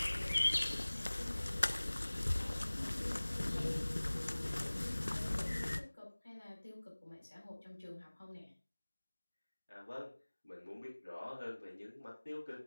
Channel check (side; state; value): both; inverted; correlation -1.00